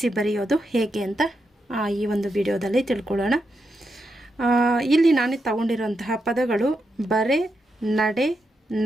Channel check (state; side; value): normal; both; correlation 0.85